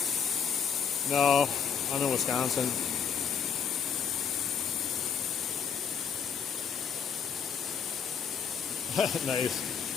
No, I'm in Wisconsin. Nice.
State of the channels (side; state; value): right; quieter; 7.0 dB